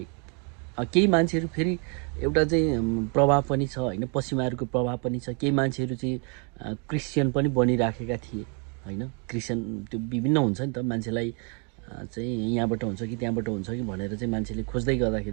केही मान्छेहरू फेरि एउटा चाहिँ प्रभाव पनि छ होइन, पश्चिमाहरूको प्रभाव पनि छ। केही मान्छेहरू चाहिँ क्रिस्चियन पनि बनिराखेका थिए होइन। क्रिस्चियन त्यो विभिन्न हुन्छ नि त, मान्छेलाई चाहिँ यहाँबाट हुन्छ कि त्यहाँबाट हुन्छ कि भनेर चाहिँ मान्छेले खोज्दै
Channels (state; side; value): quieter; left; 36.7 dB